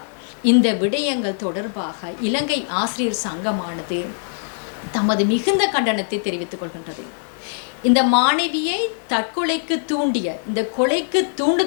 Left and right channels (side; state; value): right; silent; 65 dB below the other